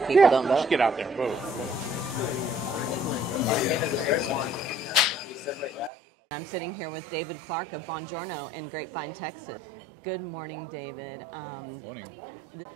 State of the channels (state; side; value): drops out; left; at 5.9 s